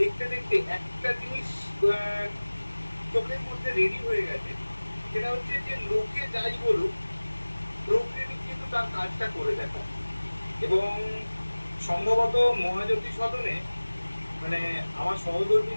দেখতে একটা জিনিস চোখের মধ্যে রেডি হয়ে গেছে, সেটা হচ্ছে যে লোকে যাই বলুক, প্রোক্রিয়েটিভ কিন্তু তার কাজটা করে দেখা। এবং সম্ভবত মহাজ্যোতি সদনে মানে আমার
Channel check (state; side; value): inverted; both; correlation -1.00